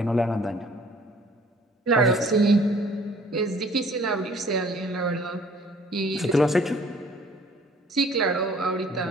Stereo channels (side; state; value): both; normal; correlation 0.56